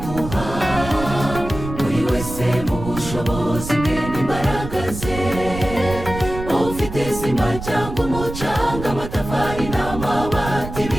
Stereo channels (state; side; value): noise; right; rumble, 9 dB below the sound